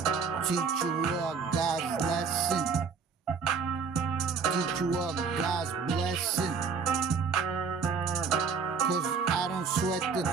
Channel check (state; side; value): quieter; left; 5.6 dB